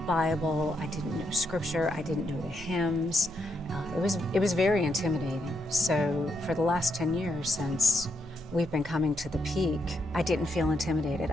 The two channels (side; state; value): both; normal; correlation 0.79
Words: Bible, I didn't know scripture, I didn't know the hymns. It was very intimidating. So for the last 10 years since we've been coming to the Peak, I didn't feel intimidated.